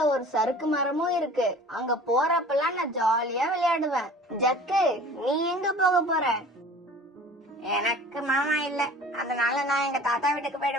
ஒரு சறுக்கு மரமும் இருக்கு. அங்க போறப்பெல்லாம் நான் ஜாலியா விளையாடுவேன். ஜக்கு, நீ எங்க போக போற? எனக்கு மாமா இல்ல, அதனால நான் எங்க தாத்தா வீட்டுக்கு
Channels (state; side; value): normal; both; correlation 0.44